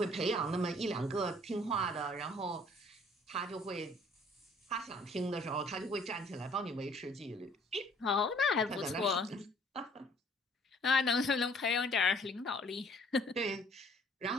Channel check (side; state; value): both; normal; correlation 0.58